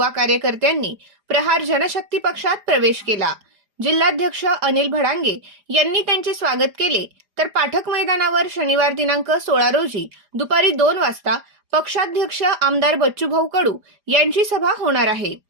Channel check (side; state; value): left; late; 4.9 ms